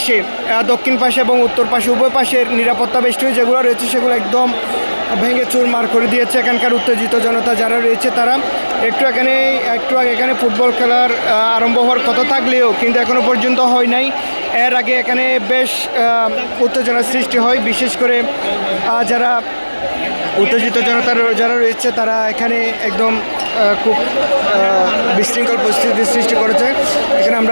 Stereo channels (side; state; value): both; inverted; correlation -1.00